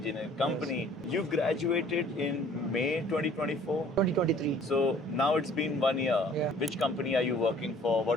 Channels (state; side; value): normal; both; correlation 0.54